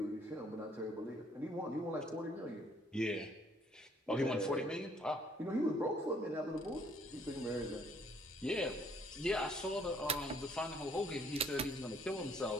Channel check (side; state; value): both; normal; correlation 0.63